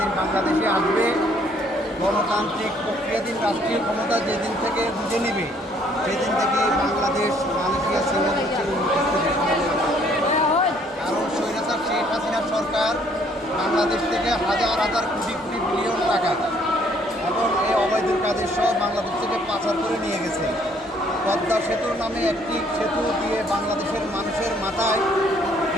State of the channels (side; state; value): both; normal; correlation 0.63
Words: বাংলাদেশে আসবে, গণতান্ত্রিক প্রক্রিয়াধীন রাষ্ট্রীয় ক্ষমতা যেদিন থেকে বুঝে নেবে, সেদিন থেকে বাংলাদেশ মালয়েশিয়া সিঙ্গাপুর কারণ স্বৈরাচার শেখ হাসিনার সরকার বাংলাদেশ থেকে হাজার হাজার কোটি কোটি বিলিয়ন টাকা এবং এই অবৈধ কাজের সহ বাংলাদেশ থেকে পাচার করে নিয়ে গেছে। পদ্মা সেতুর নামে একটি সেতু দিয়ে বাংলাদেশের মানুষের মাথায়